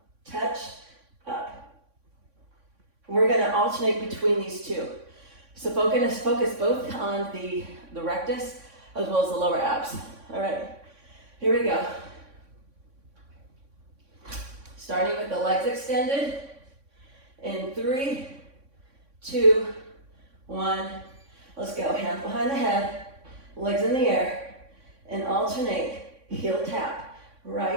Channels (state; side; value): late; left; 3.6 ms